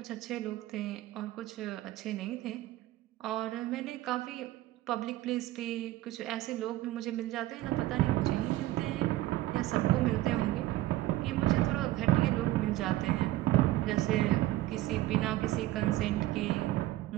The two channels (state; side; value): quieter; left; 16.1 dB